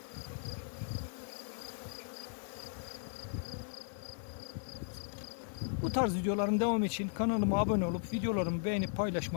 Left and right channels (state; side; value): silent; right; digital silence